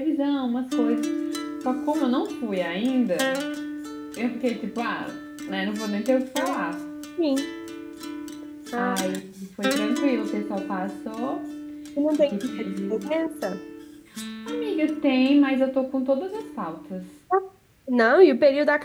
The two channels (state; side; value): identical; both; correlation 1.00